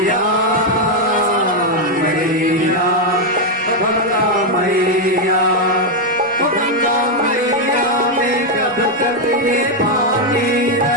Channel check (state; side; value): normal; both; correlation 0.02